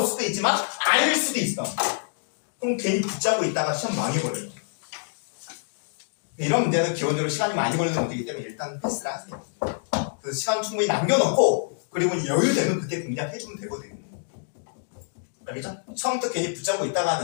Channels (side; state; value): right; silent; digital silence